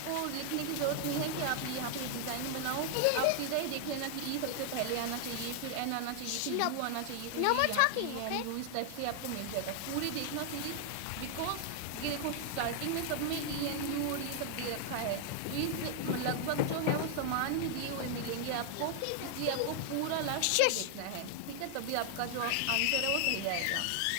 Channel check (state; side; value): different; both; correlation 0.00